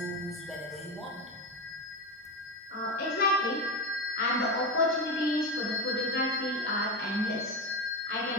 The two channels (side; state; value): both; normal; correlation 0.17